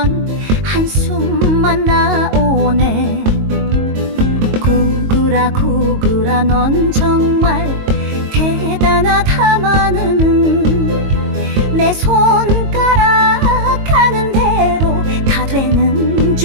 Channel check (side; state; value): left; late; 22 ms